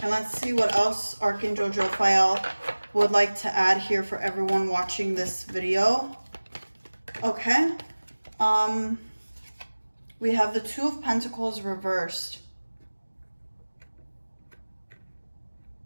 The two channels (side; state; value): both; inverted; correlation -1.00